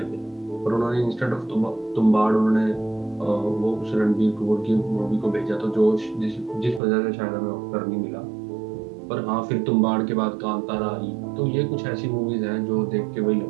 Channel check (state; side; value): drops out; left; at 6.8 s